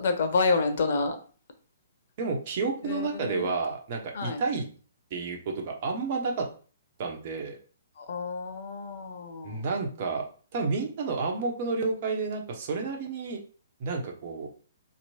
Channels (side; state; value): both; inverted; correlation -0.57